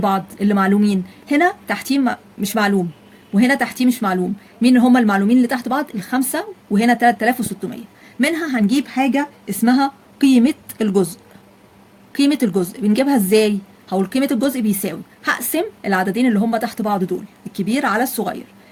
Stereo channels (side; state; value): both; identical; correlation 1.00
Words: اللي معلومين؟ هنا تحتيه مش معلوم، وهنا تحتيه مش معلوم. مين هم المعلومين اللي تحت بعض؟ الخمسه وهنا 3600. منها هنجيب حاجه اسمها قيمه الجزء. قيمه الجزء بنجيبها ازاي؟ هقول قيمه الجزء بيساوي، هقسم العددين اللي هم تحت بعض دول الكبير على الصغير.